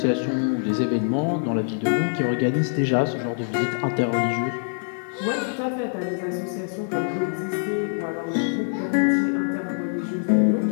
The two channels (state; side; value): silent; right; digital silence